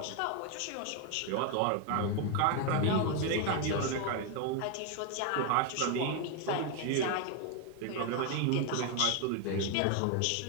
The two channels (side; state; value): both; different; correlation 0.01